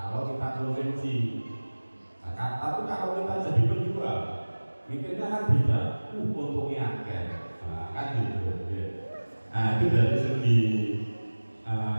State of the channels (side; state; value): both; inverted; correlation -1.00